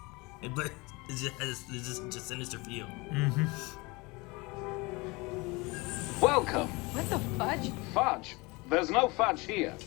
But it just has just sinister feel. Welcome. What the fudge? Fudge. There's no fudge here.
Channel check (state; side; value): quieter; right; 25.2 dB